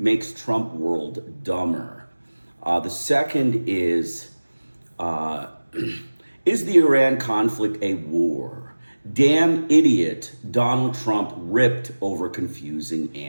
Trump world dumber." The second is the Iran conflict a war? Damn idiot, Donald Trump ripped over confusing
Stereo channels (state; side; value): inverted; both; correlation -1.00